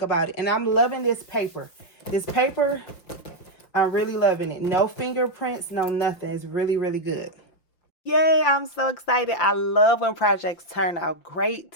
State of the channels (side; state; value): right; late; 5.8 ms